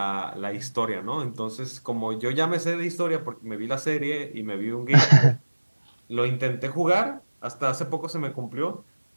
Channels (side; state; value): both; inverted; correlation -1.00